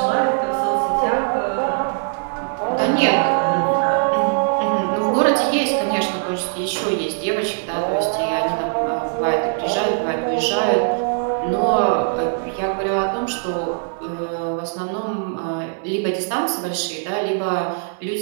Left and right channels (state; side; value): silent; left; digital silence